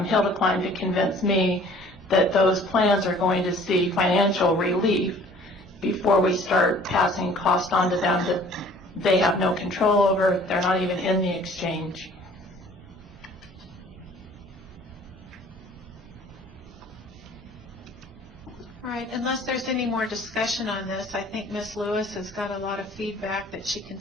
hill to climb to convince me that those plans are going to see financial relief before we start passing cost on to them that they have no control over. They're not even in the exchange. All right, unless there's any more discussion on this, I think Ms. Lewis has got a lot of feedback that she can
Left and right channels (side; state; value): both; normal; correlation 0.52